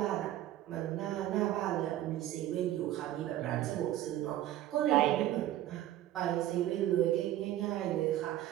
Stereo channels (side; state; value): left; quieter; 13.5 dB